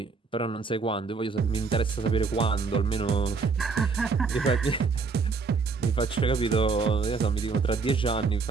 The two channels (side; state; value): left; quieter; 4.6 dB